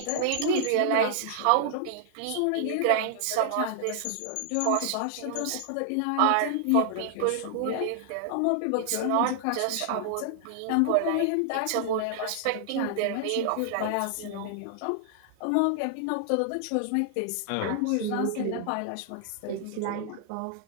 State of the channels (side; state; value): both; different; correlation -0.01